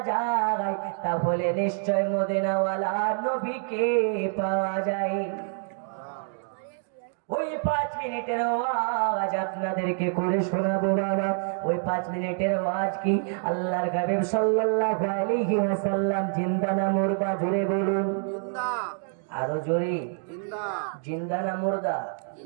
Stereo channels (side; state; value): left; silent; 57 dB below the other